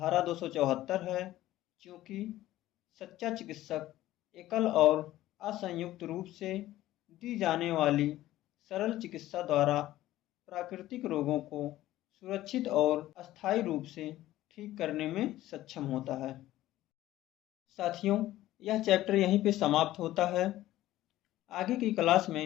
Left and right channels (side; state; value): right; quieter; 15.1 dB